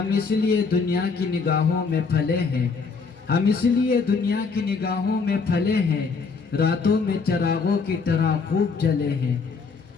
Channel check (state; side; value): quieter; right; 4.9 dB